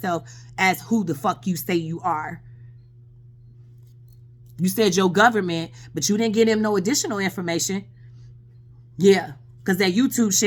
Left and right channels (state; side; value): identical; both; correlation 1.00